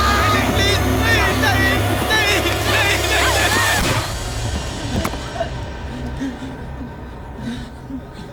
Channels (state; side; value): identical; both; correlation 1.00